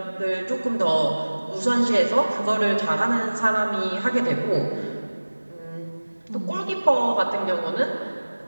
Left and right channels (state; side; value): inverted; both; correlation -1.00